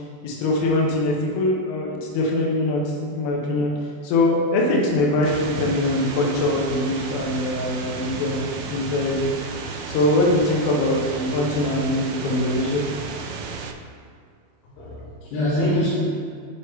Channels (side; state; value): right; late; 27 ms